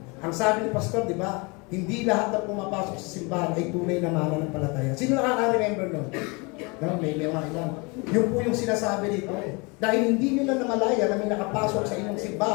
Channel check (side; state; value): right; quieter; 28.9 dB